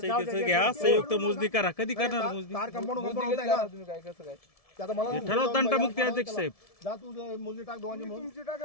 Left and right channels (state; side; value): late; right; 1.7 ms